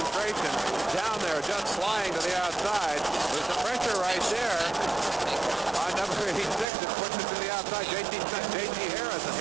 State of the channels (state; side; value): drops out; left; at 6.7 s